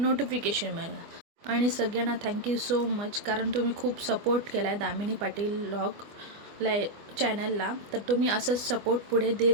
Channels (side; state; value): left; late; 25 ms